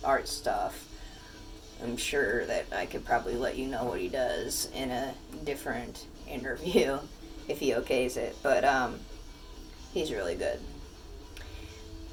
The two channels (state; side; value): identical; both; correlation 1.00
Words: art stuff. I'm sure that I could probably let you know what he does in a different interview if he okays it. But he's really good.